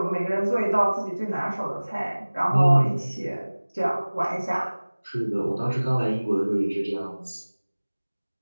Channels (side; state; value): both; inverted; correlation -1.00